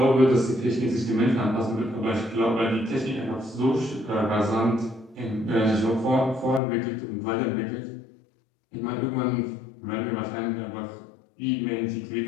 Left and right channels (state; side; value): drops out; right; at 6.6 s